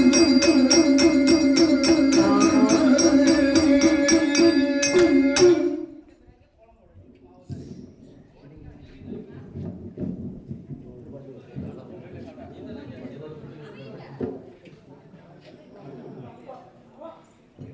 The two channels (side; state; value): both; identical; correlation 1.00